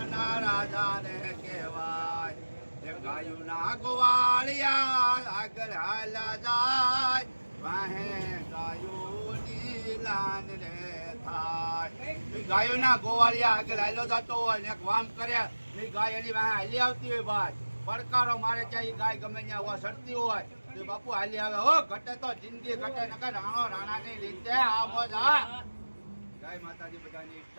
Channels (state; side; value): inverted; both; correlation -1.00